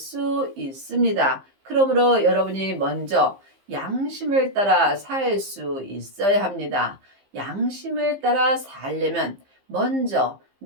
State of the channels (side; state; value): left; late; 15 ms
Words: 있습니다. 그러므로 여러분이 먼저 양심을 따라 살 수 있어야 합니다. 양심을 따라 살려면 먼저